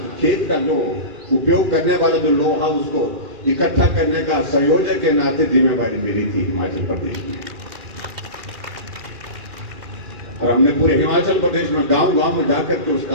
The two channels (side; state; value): left; late; 2.4 ms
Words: खेत का जो उपयोग करने वाला जो लोहा उसको इकट्ठा करने का संयोजक के नाते जिम्मेवारी मिली थी हिमाचल प्रदेश में। और हमने पूरे हिमाचल प्रदेश में गांव गांव में जाकर के उस